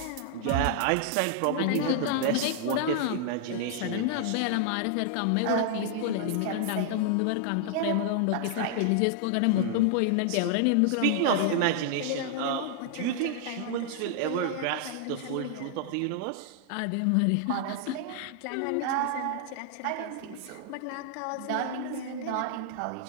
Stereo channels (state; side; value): different; both; correlation -0.01